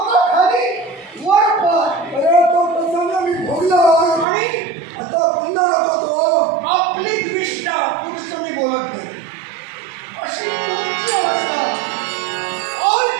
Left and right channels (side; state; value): left; drops out; at 4.2 s